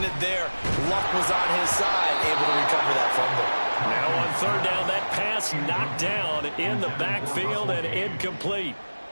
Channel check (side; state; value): both; inverted; correlation -1.00